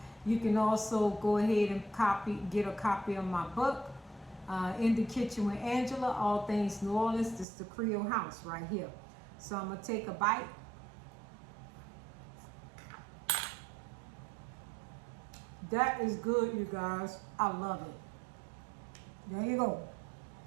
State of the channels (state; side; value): drops out; left; at 7.5 s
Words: You can also go ahead and get a copy of my book, In the Kitchen with Angela, All Things New Orleans. This is the Creole house right here. So I'm gonna take a bite. That is good, you guys. I love it. There you go.